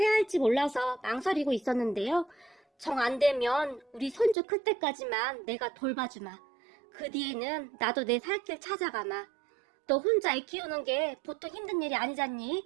할지 몰라서 망설이고 있었는데요. 정 안 되면 우리 손주 클 때까지만 내가 돌봐주마. 그 뒤에는 나도 내 살 길 찾아가마. 너 혼자 애 키우는 게 보통 힘든 일이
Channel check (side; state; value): left; drops out; at 4.4 s